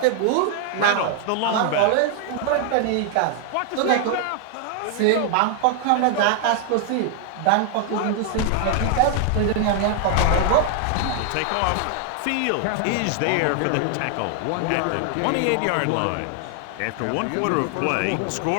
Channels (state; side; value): different; both; correlation 0.00